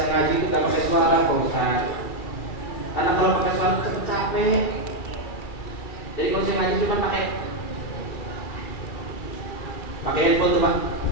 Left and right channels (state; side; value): late; right; 2.3 ms